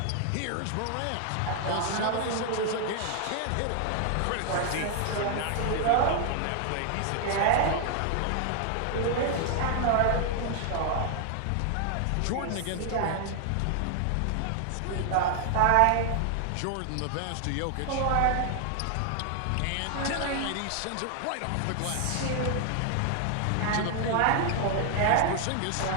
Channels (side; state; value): both; different; correlation 0.00